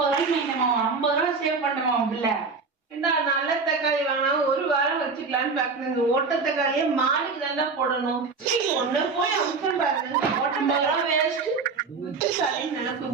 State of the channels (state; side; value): quieter; left; 4.6 dB